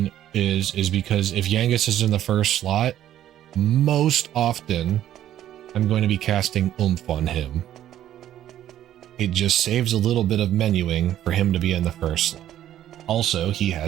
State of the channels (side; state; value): left; quieter; 12.0 dB